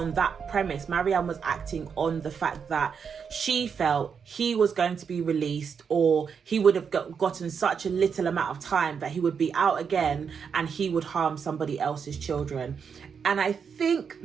that premise. Marianne was acting on the fact that she felt he was going to be released, or he would have gotten such a little amount of time that he would be out again and he would harm somebody else's children. And I think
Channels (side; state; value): left; quieter; 6.5 dB